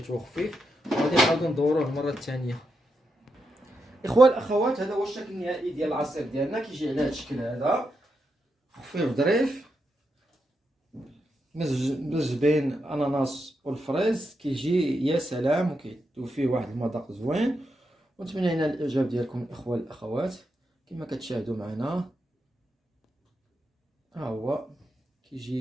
خفيف. وغادي نعاودو ندوروه المره الثانيه. اخوان الاخوات هذا هو الشكل النهائي ديال العصير ديالنا، كيجي على هذا الشكل هذا خفيف ظريف، مزج بين الاناناس والفريز، كيجي يا سلام وكيدوب فيه واحد المذاق زوين. ونتمنى لنا الاعجاب ديالكم الاخوان الاخوات. كما كتشاهدوا معنا ها هو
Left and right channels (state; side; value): normal; both; correlation 0.84